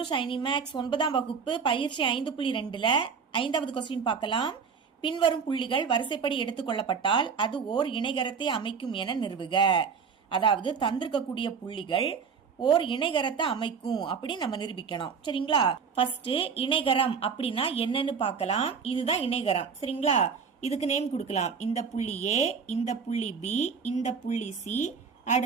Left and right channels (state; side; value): quieter; left; 6.0 dB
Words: Shiny Max. 9ஆம் வகுப்பு பயிற்சி 5.2ல 5வது கொஸ்டின் பார்க்கலாம். பின்வரும் புள்ளிகள் வரிசைப்படி எடுத்துக்கொள்ளப்பட்டால் அது ஓர் இணைகரத்தை அமைக்கும் என நிறுவுக. அதாவது தந்திருக்கக்கூடிய புள்ளிகள் ஓர் இணைகரத்தை அமைக்கும் அப்படி நம்ம நிரூபிக்கணும். சரிங்களா? ஃபர்ஸ்ட் இணைகரம் அப்படின்னா என்னன்னு பார்க்கலாம். இதுதான் இணைகரம். சரிங்களா? இதுக்கு நேம் கொடுக்கலாம். இந்த புள்ளி ஏ, இந்த புள்ளி பி, இந்த புள்ளி சி,